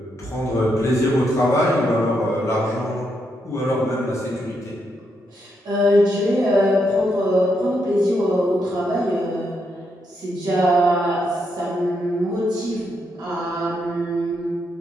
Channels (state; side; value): normal; both; correlation 0.80